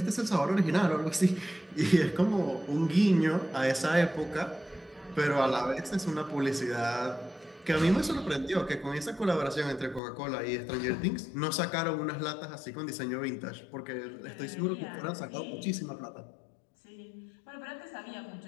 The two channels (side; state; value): right; drops out; at 10.0 s